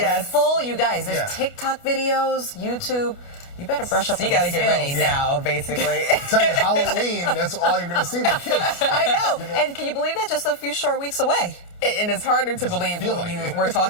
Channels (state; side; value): late; right; 29 ms